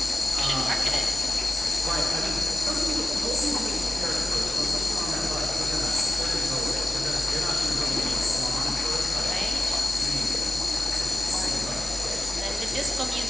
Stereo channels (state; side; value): normal; both; correlation 0.94